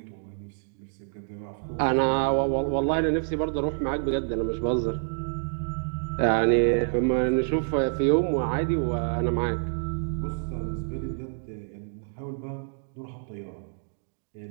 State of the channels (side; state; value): left; silent; digital silence